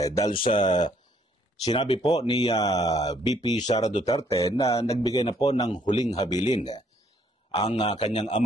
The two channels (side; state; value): both; normal; correlation 0.66